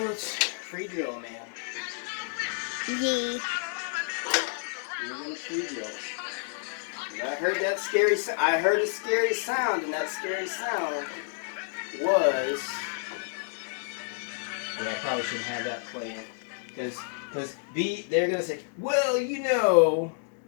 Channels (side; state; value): right; silent; 58 dB below the other